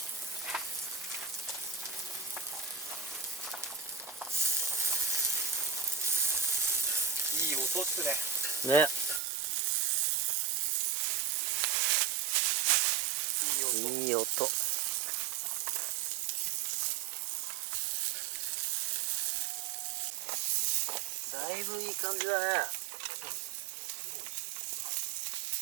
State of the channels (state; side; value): drops out; left; at 9.2 s